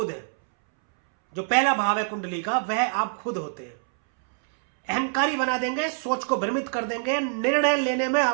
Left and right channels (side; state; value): left; silent; 62 dB below the other